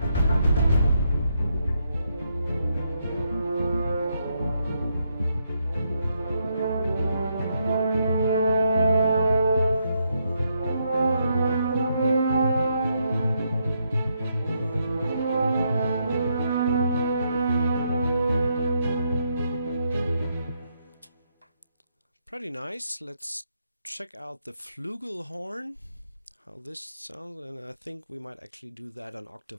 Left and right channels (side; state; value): both; inverted; correlation -0.78